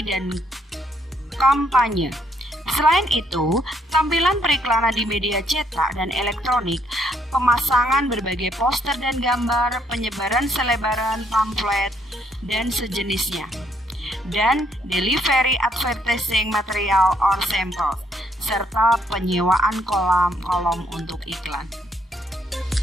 dan kampanye. Selain itu, tampilan periklanan di media cetak dan elektronik, pemasangan berbagai poster dan gambar, penyebaran selebaran, pamflet, dan sejenisnya, dan delivery advertising material or sample, serta penyewaan kolom untuk iklan.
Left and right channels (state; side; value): normal; both; correlation 0.70